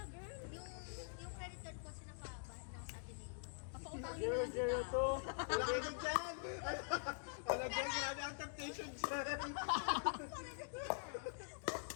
girl. Yung credit card ko sinapabahan ng sa atin eh. Papautangin mo lang kita. Wala kayo dyan! Wala dyan, grabe ang temptation dyan!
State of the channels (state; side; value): silent; right; digital silence